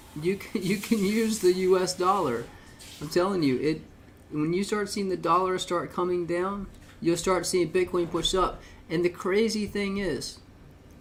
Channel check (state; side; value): identical; both; correlation 1.00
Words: You can use the U.S. dollar. I'm telling you, when you start seeing the dollar start coming down, you'll start seeing Bitcoin push up. And the crazy thing is,